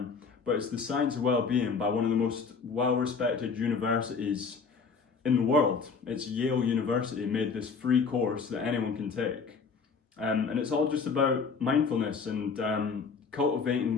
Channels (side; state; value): right; quieter; 5.2 dB